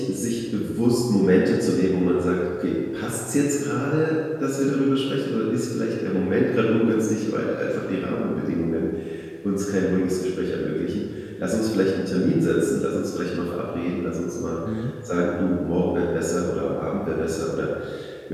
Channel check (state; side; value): identical; both; correlation 1.00